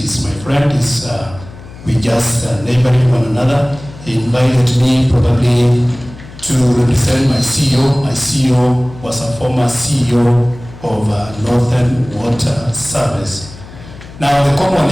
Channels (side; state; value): left; noise; hum, 17 dB below the sound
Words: is my friend. We just neighboring one another. He invited me probably to represent my CEO. My CEO was a former CEO of Northern Water Service. Now, the common